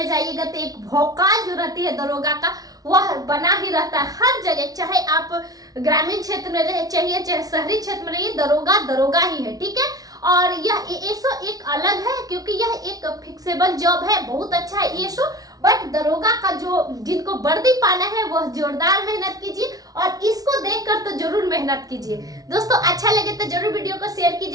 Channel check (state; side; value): late; left; 0.18 ms